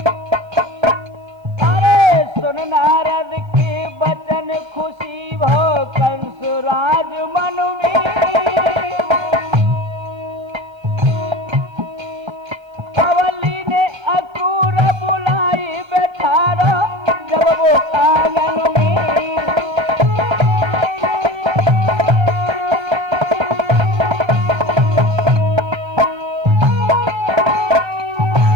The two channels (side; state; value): both; normal; correlation 0.34